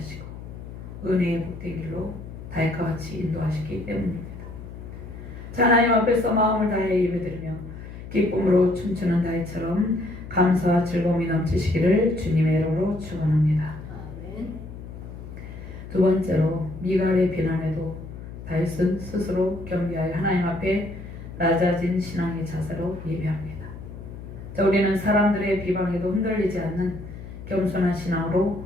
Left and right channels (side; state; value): left; noise; hum, 12 dB below the sound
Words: 은혜의 복된 길로 다윗과 같이 인도하시기 때문입니다. 하나님 앞에서 마음을 다해 예배드리며 기쁨으로 춤추는 다윗처럼 감사와 즐거움이 넘치시기를 주님의 이름으로 축원합니다. 두 번째로 미갈의 비난에도 다윗은 스스로 겸비하여 하나님 앞에 낮아진 신앙의 자세로 예배합니다. 자, 우리는 사람들의 비방에도 흔들리지 않는 겸손한